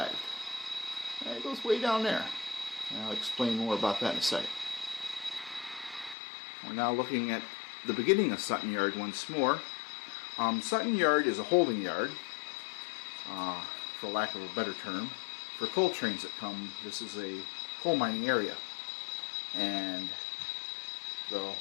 And it goes way down there. And I'll explain more about that in a second. We're now looking at the beginning of Sutton Yard once more. Sutton Yard is a holding yard, for lack of a better term, for coal trains that come. This is a coal mining area. And the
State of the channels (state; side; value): drops out; right; at 6.2 s